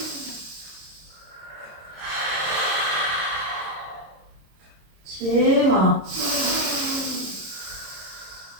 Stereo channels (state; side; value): late; left; 26 ms